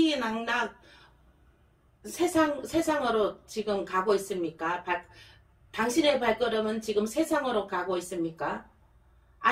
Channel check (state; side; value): identical; both; correlation 1.00